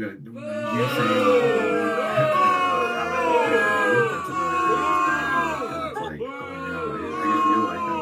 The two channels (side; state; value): both; identical; correlation 1.00